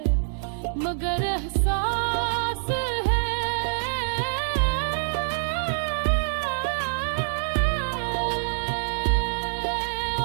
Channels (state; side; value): silent; left; 61 dB below the other